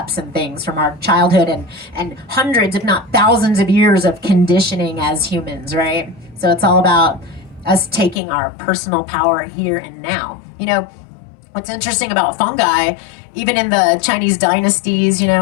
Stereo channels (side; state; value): right; drops out; at 8.2 s